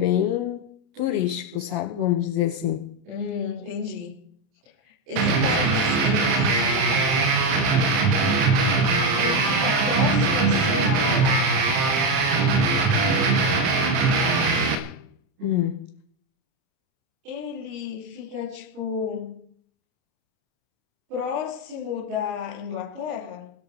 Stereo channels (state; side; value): late; left; 29 ms